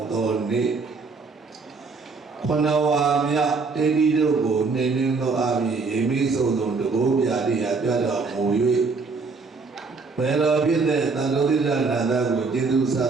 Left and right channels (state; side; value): quieter; left; 4.4 dB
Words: mudoni. Konawamya tedi dogo nening do abi emi sodon dogo biadi ada muyui. Pero bide tanuri nada go jedu